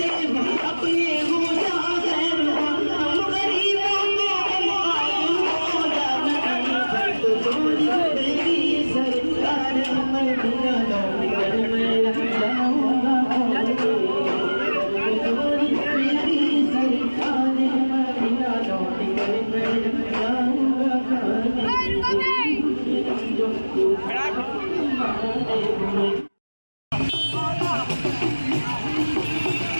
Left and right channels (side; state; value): both; inverted; correlation -1.00